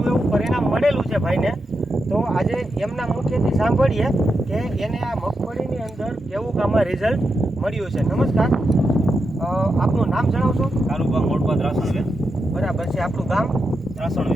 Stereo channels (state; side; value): normal; both; correlation 0.86